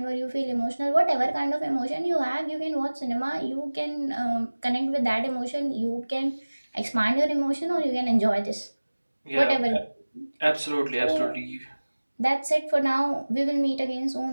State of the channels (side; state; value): both; inverted; correlation -1.00